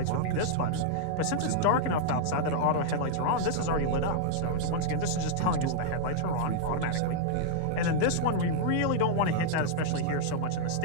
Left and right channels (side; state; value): both; different; correlation -0.01